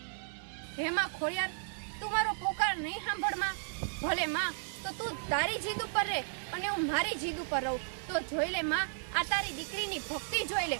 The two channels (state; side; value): silent; left; 55 dB below the other